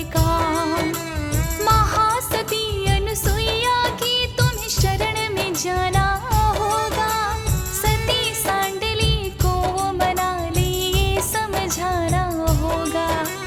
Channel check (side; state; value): both; identical; correlation 1.00